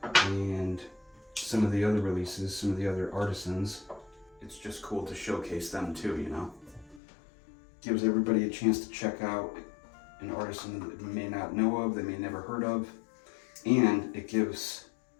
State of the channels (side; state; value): right; drops out; at 7.0 s